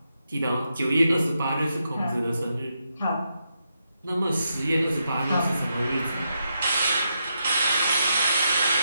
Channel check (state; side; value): inverted; both; correlation -0.83